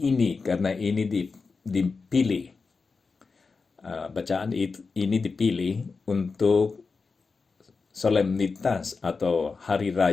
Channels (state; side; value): quieter; right; 4.5 dB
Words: karena ini dipilih, bacaan ini dipilih untuk solemnitas atau hari